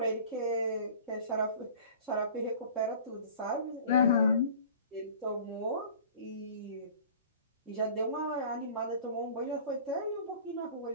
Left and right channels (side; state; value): both; inverted; correlation -0.44